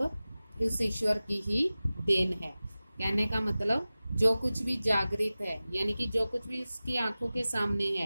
उस ईश्वर की ही देन है। कहने का मतलब जो कुछ भी जागृत है, यानी कि जो कुछ भी उसकी आंखों के सामने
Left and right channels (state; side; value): inverted; both; correlation -0.97